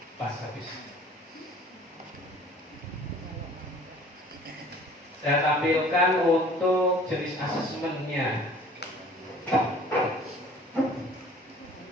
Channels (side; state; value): both; normal; correlation 0.50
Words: Saya tampilkan untuk jenis asesmennya.